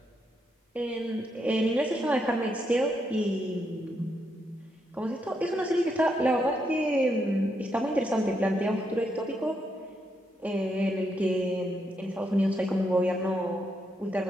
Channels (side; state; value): both; normal; correlation 0.79